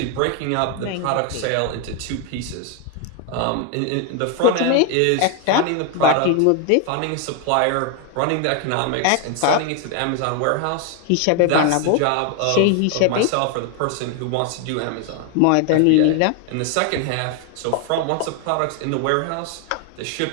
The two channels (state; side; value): different; both; correlation 0.01